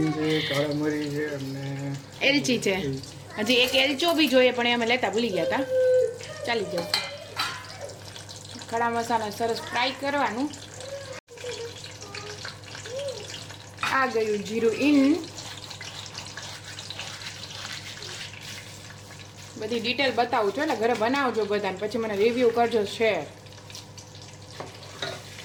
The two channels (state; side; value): identical; both; correlation 1.00